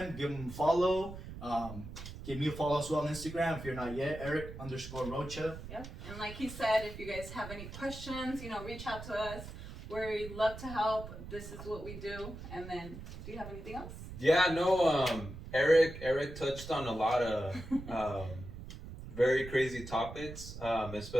give them a follow. Give me a follow as well on Instagram if you're not yet, Eric_Rocha. Yep. And like he said, if you guys have any questions, you know, reach out to us. We love to help. This is what we do. And then, do you have anything else? Yeah, no, Eric touched on a lot of very crazy topics,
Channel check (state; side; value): noise; right; rumble, 11 dB below the sound